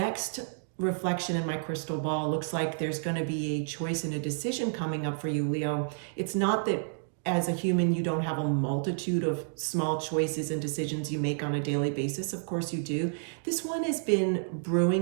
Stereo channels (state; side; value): silent; left; digital silence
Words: reflection in my crystal ball looks like there's going to be a choice and a decision coming up for you, Leo. It's not that as a human you don't have a multitude of small choices and decisions you make on a daily basis. Of course you do. This one has been